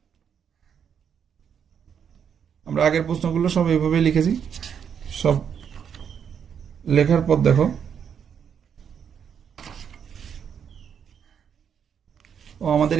আমরা আগের প্রশ্নগুলো সব এইভাবে লিখেছি। সব লেখার পর দেখো, আমাদের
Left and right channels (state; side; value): quieter; left; 7.7 dB